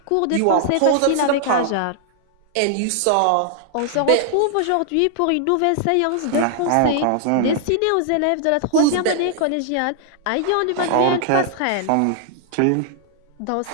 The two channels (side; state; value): both; different; correlation -0.01